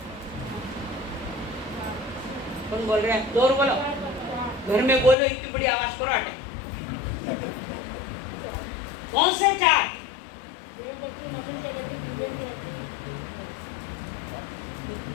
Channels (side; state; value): right; drops out; at 5.2 s